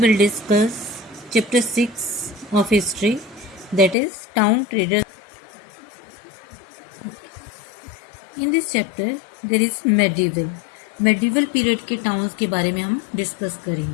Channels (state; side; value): drops out; right; at 4.0 s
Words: discuss chapter 6 of history, that is town traders. In this chapter there is medieval period के towns के बारे में हम discuss